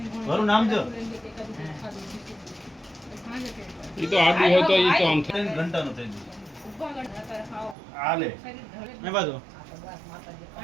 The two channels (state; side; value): drops out; left; at 7.8 s